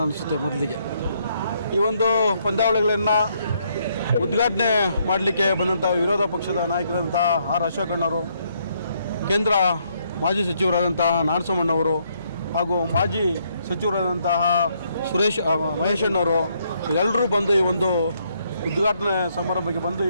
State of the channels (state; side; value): inverted; both; correlation -0.72